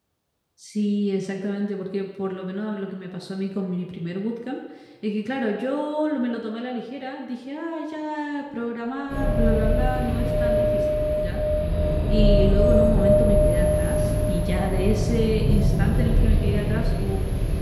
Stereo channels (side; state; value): both; identical; correlation 1.00